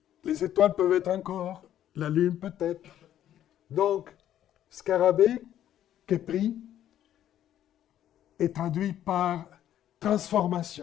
Les étoiles peuvent être encore, la lune peut-être. Donc, scarabée, Képri, est traduit par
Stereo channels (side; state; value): right; quieter; 11.4 dB